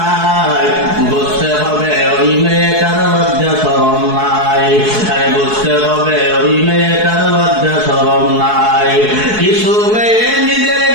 বুঝতে হবে ওই মেয়েটার লজ্জা শরম নাই। আরে বুঝতে হবে ওই মেয়েটার লজ্জা শরম নাই। কিছু মেয়ে নিজের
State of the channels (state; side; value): late; left; 4.7 ms